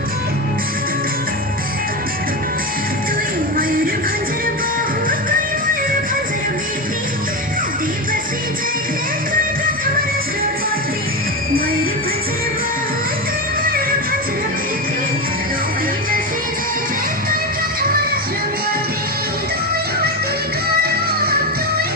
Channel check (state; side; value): normal; both; correlation 0.17